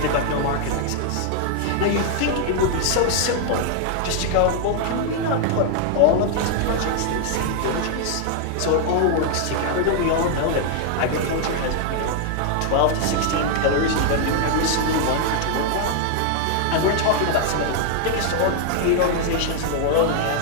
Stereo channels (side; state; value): both; different; correlation 0.00